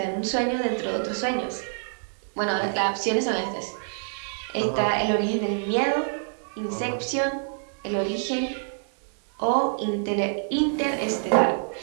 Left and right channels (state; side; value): silent; left; digital silence